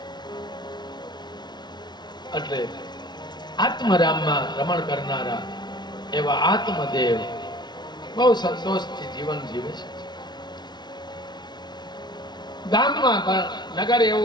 એટલે આત્મરામમાં રમણ કરનારા એવા આત્મદેવ બહુ સંતોષથી જીવન જીવે છે. ગામમાં નગર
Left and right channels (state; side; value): late; right; 0.20 ms